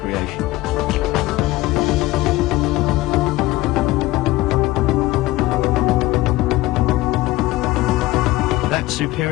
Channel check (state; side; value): quieter; right; 18.4 dB